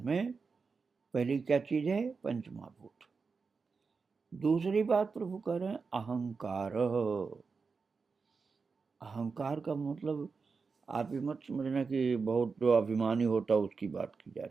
में पहली क्या चीज है? पंच महाभूत। दूसरी बात प्रभु कह रहे हैं अहंकार। अहंकार का मतलब आप ये मत समझना कि बहुत जो अभिमानी होता है उसकी बात की जा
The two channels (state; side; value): quieter; left; 4.9 dB